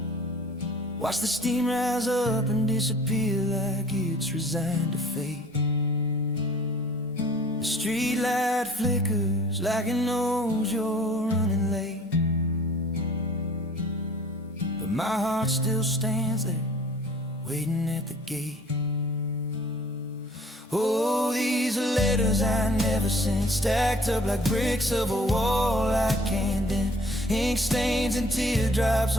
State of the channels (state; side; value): normal; both; correlation 0.52